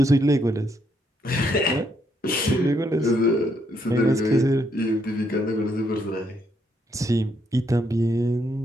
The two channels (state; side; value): normal; both; correlation 0.74